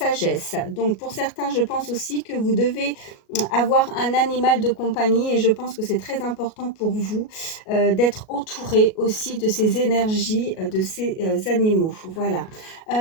Donc pour certains, je pense aussi que vous devez avoir un animal de compagnie et je pense que c'est très important pour vous d'être entouré aussi de ces énergies de ces animaux. Voilà.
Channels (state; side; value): late; right; 37 ms